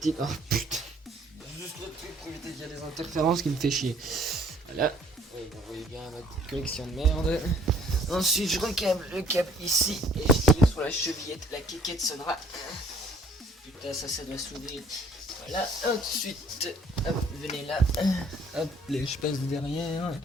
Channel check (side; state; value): both; normal; correlation 0.59